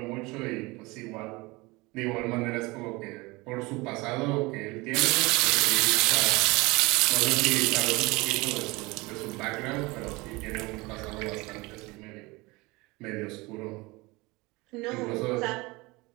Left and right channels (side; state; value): left; quieter; 23.6 dB